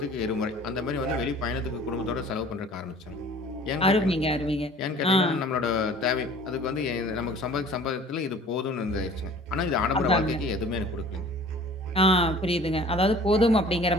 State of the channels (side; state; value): both; normal; correlation 0.48